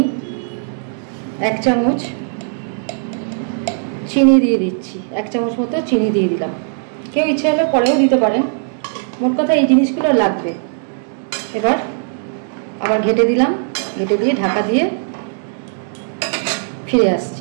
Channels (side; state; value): left; silent; digital silence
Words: 1 চামচ চিনি দিয়ে দিচ্ছি। 1 চামচ মতো চিনি দিয়ে দিলাম। কেউ ইচ্ছে হলে পরেও দিতে পারেন, মোট কথা এই জিনিসগুলো লাগবে। এবার আবার ঘেটে দিলাম, ঘেটে দিয়ে ঢাকা দিয়ে ফিরে